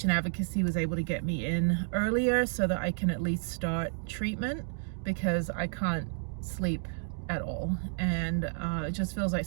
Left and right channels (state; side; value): silent; left; digital silence